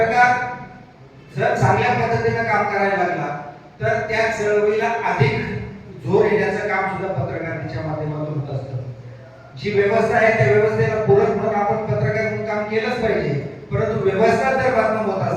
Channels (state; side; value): identical; both; correlation 1.00